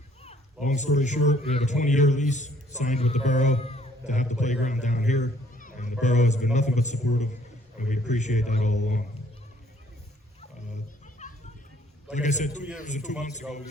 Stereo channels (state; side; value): normal; both; correlation 0.62